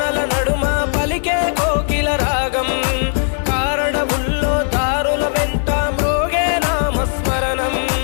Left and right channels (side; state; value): right; silent; 63 dB below the other